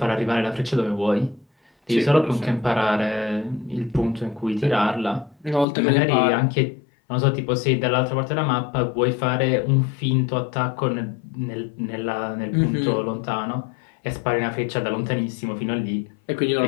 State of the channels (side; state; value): right; drops out; at 5.7 s